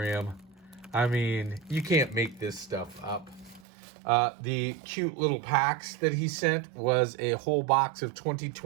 I mean, you can't make this stuff up. The cute little packs that he sent was a whole box of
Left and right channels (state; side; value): drops out; left; at 3.6 s